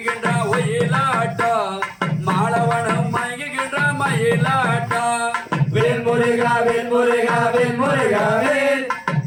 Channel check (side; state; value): both; identical; correlation 1.00